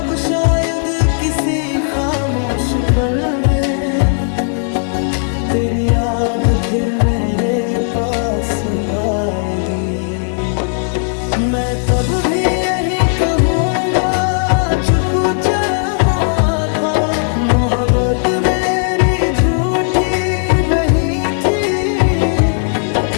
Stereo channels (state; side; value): silent; right; digital silence